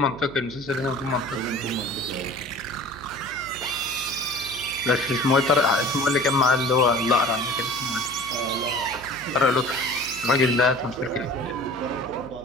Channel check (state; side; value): noise; right; hum, 18 dB below the sound